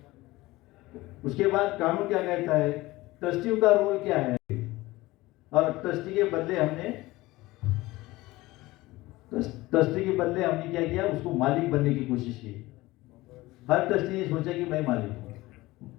उसके बाद कानून क्या कहता है, ट्रस्टियों का रोल क्या है, और ट्रस्टी के बदले हमने क्या किया, उसको मालिक बनने की कोशिश की। हर ट्रस्टी ने सोचा कि मैं मालिक हूं।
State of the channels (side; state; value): right; quieter; 19.4 dB